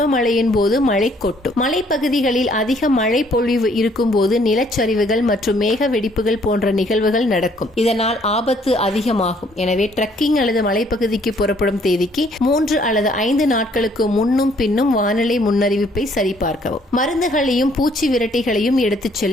போது மழை கொட்டும். மலைப்பகுதிகளில் அதிக மழை பொழிவு இருக்கும் போது நிலச்சரிவுகள் மற்றும் மேக வெடிப்புகள் போன்ற நிகழ்வுகள் நடக்கும். இதனால் ஆபத்து அதிகமாகும். எனவே ட்ரக்கிங் அல்லது மலைப்பகுதிக்கு புறப்படும் தேதிக்கு 3 அல்லது 5 நாட்களுக்கு முன்னும் பின்னும் வானிலை முன்னறிவிப்பை சரிபார்க்கவும். மருந்துகளையும் பூச்சி விரட்டிகளையும் எடுத்துச்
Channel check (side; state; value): both; normal; correlation 0.64